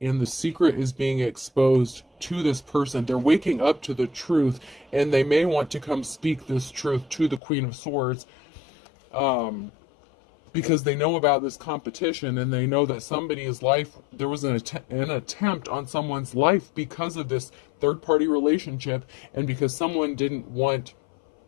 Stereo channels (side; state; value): right; drops out; at 7.4 s